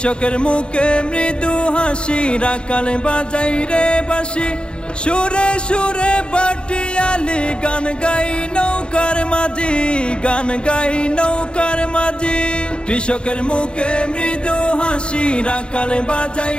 মুখে মৃদু হাসি, রাখাল বাজাই রে বাঁশি, সুরে সুরে বাটিয়ালি গান গাই নৌকার মাঝি, গান গাই নৌকার মাঝি। কৃষকের মুখে মৃদু হাসি, রাখাল বাজাই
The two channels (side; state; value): right; late; 0.054 ms